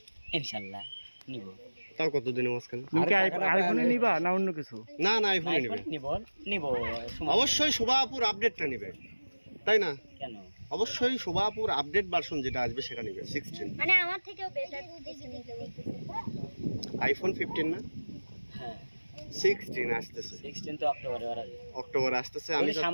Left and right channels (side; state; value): both; inverted; correlation -1.00